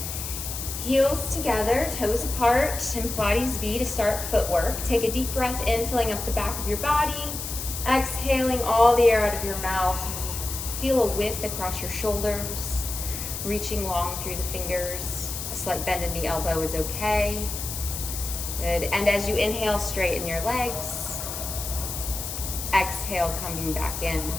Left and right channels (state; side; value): noise; left; hiss, 6 dB below the sound